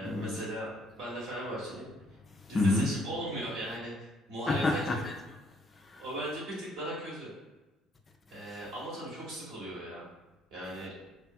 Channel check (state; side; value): normal; both; correlation 0.65